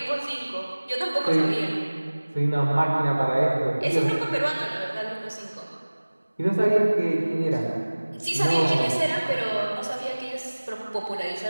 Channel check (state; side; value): inverted; both; correlation -1.00